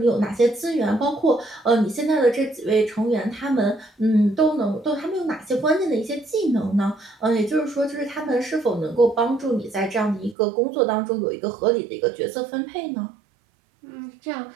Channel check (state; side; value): drops out; left; at 10.4 s